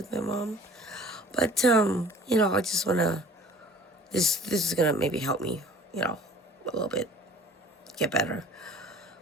my mom, but I just wanna. This is gonna maybe help me, a little bit get better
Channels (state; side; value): normal; both; correlation 0.48